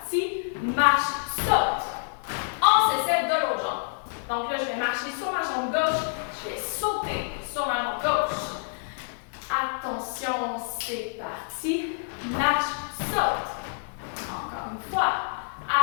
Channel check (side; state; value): right; silent; digital silence